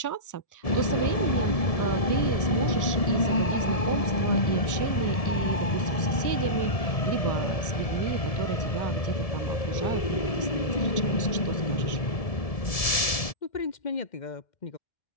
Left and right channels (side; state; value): right; late; 1.7 ms